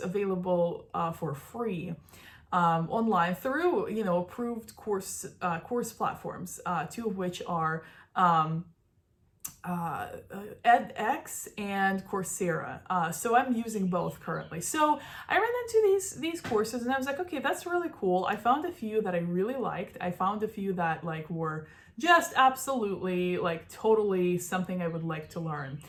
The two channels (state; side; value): identical; both; correlation 1.00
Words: for free online through, approved course platforms, 2 of which are edX and Coursera. So I'm using both currently. So I ran into these courses, and I was like, okay, that's really cool. I found a few that I really liked. I found a few that were just absolutely totally something I would like to learn.